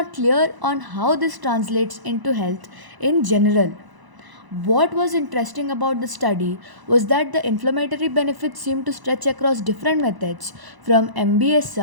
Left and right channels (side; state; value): left; late; 1.0 ms